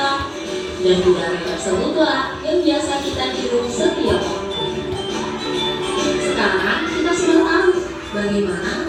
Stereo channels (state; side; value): identical; both; correlation 1.00